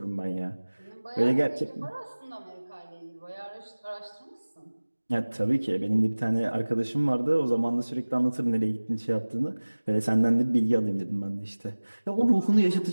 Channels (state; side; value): inverted; both; correlation -1.00